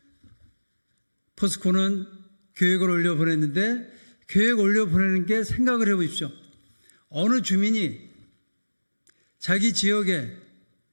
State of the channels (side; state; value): both; inverted; correlation -1.00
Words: 포스코는 계획을 올려보냈는데 계획 올려보내는 게 생각을 해보십시오. 어느 주민이 자기 지역에